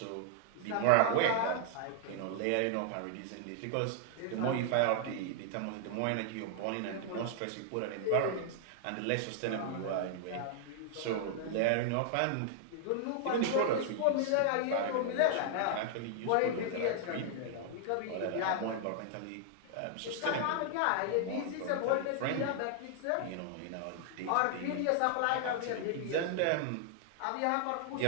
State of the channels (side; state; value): both; different; correlation -0.01